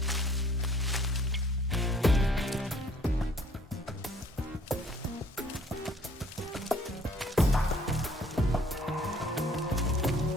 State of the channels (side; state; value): both; normal; correlation 0.58